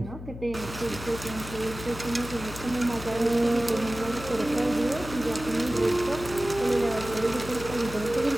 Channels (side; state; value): left; noise; hum, 11 dB below the sound